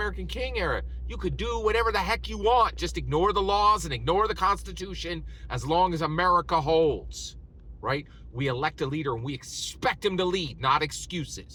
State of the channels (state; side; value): identical; both; correlation 1.00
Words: King era. You could do whatever the heck you want. Just ignore the laws and ignore the Constitution as long as America holds, right? We elect a leader and we expect him to lead, not